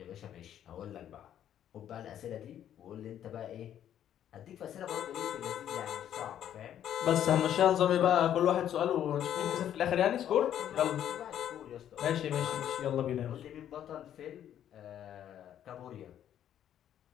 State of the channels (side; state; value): right; quieter; 10.5 dB